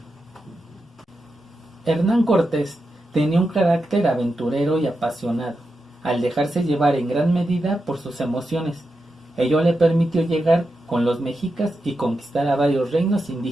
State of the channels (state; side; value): normal; both; correlation 0.88